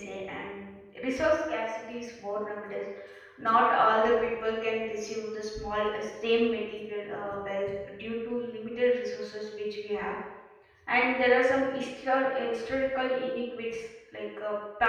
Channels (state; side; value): identical; both; correlation 1.00